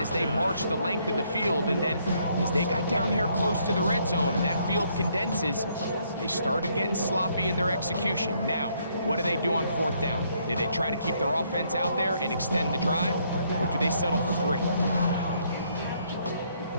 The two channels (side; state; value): both; inverted; correlation -0.70